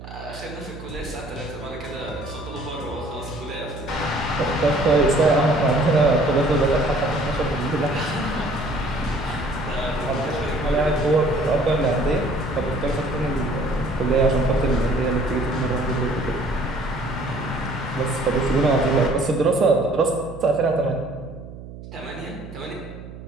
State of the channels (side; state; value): right; noise; hum, 14 dB below the sound